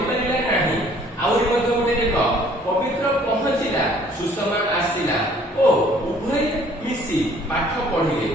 ନାହିଁ। ଆହୁରି ମଧ୍ୟ ଗୋଟେ ଦେଖ, ପବିତ୍ର ପହଞ୍ଚିଲା ସୁଷମା ଆସିଲା ଓ ଉଭୟ ମିଶି ପାଠ ପଢିଲେ।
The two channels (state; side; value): normal; both; correlation 0.57